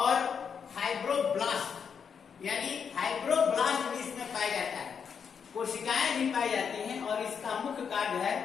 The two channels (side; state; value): right; quieter; 6.8 dB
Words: फाइब्रोब्लास्ट, यानी फाइब्रोब्लास्ट भी इसमें पाया जाता है, कोशिकाएं भी पाई जाती हैं। और इसका मुख्य कार्य है